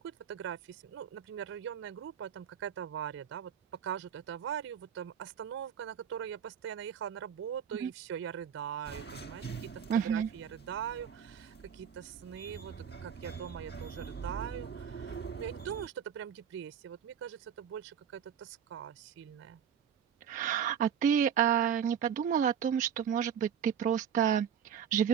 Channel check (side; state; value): left; quieter; 8.4 dB